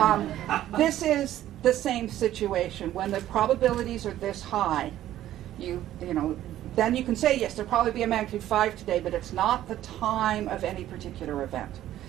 This is the same situation. When the probabilities are this high, you know, then you can say, yes, there'll probably be a magnitude 5 today, but it's not the time of any particular event.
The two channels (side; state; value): left; quieter; 13.0 dB